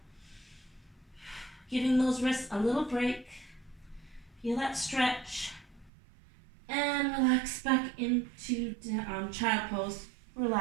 Giving those wrists a little break. Feel that stretch. And relax back into child pose.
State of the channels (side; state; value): left; drops out; at 5.9 s